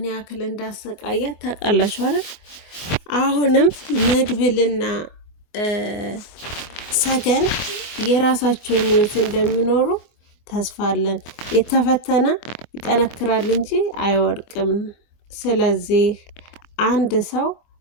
ያክል እንዳሰቃያት ታውቃላችሁ አይደል? አሁንም መድብልና ሰገን የራሳቸውን ህይወት እንደሚኖሩ ተስፋ አለን። የተፈተነ ይጠነክራል እንጂ አይወድቅም። ስለዚህ አንድ ሰው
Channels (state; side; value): late; right; 24 ms